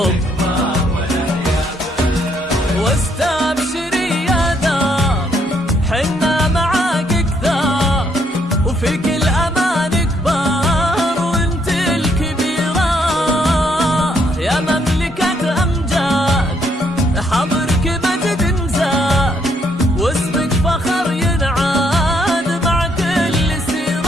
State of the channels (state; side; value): normal; both; correlation 0.72